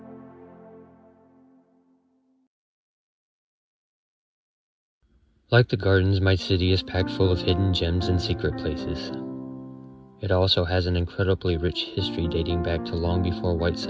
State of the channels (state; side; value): identical; both; correlation 1.00